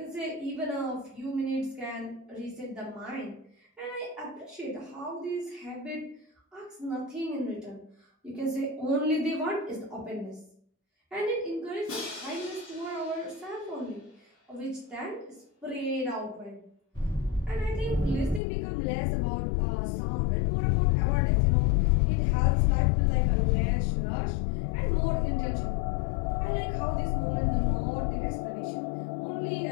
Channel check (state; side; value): drops out; right; at 18.4 s